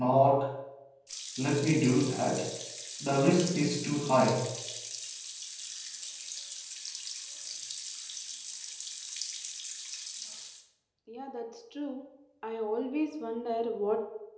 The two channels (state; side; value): identical; both; correlation 1.00